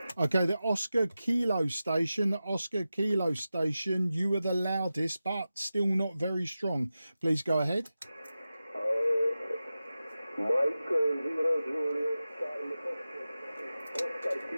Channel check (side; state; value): both; inverted; correlation -0.94